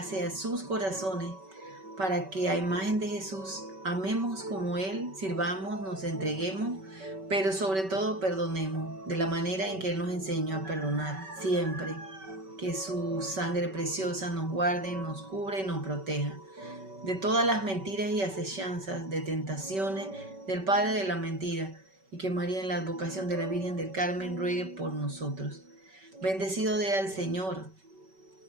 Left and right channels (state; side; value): late; left; 5.2 ms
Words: a sus corazones para que a imagen de Jesús amemos como Él, sirvamos, nos entreguemos, pero sobre todo perdonemos de la manera en que Él nos enseñó a perdonar siempre. Que su sangre preciosa nos guarde, nos cubre y nos proteja de todas las mentiras y acechanzas, de tentaciones del Padre de la mentira, y que María en la advocación de la Virgen del Carmen ruegue por nosotros. Bendecido sea el Señor.